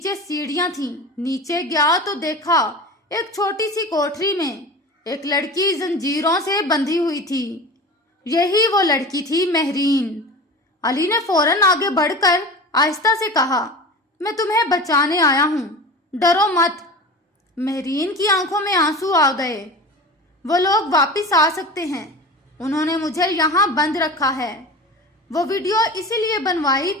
سیڑھیاں تھیں۔ نیچے گیا تو دیکھا ایک چھوٹی سی کوٹری میں ایک لڑکی زنجیروں سے بندھی ہوئی تھی۔ یہی وہ لڑکی تھی، مہرین۔ علی نے فوراً آگے بڑھ کر آہستہ سے کہا، میں تمہیں بچانے آیا ہوں، ڈرو مت۔ مہرین کی آنکھوں میں آنسو آ گئے۔ وہ لوگ واپس آ سکتے ہیں، انہوں نے مجھے یہاں بند رکھا ہے۔ وہ ویڈیو اسی لیے بنوائی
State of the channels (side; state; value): both; normal; correlation 0.33